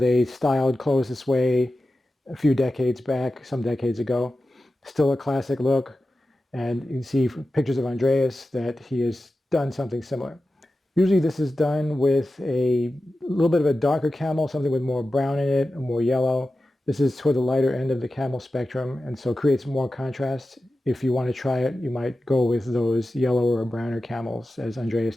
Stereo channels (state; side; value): normal; both; correlation 0.93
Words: styled clothes this way a few decades back, some decades ago. Still a classic look, and you can see from pictures of Andreas that he has done something similar. Usually this is done with a little bit of a darker camel, something with more brown in it, more yellow. This is toward the lighter end of the camel spectrum, and so creates more contrast. If you want to try it, you might go with those yellower or browner camels, as Andreas